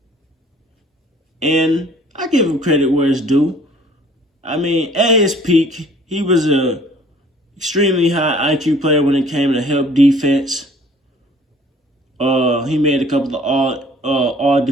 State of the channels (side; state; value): both; normal; correlation 0.54